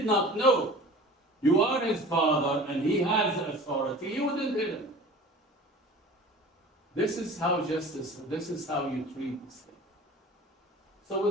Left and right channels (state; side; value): normal; both; correlation 0.41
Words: not know you are his father and he has authority, he wouldn't hit him. This is how justice, this is how you treat the slave. So